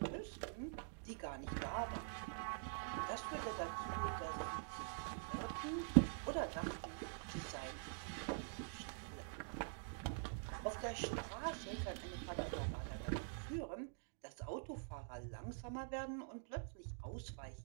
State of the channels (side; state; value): left; silent; digital silence